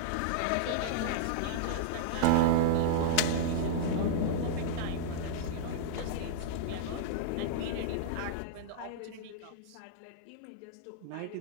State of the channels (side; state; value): both; different; correlation -0.02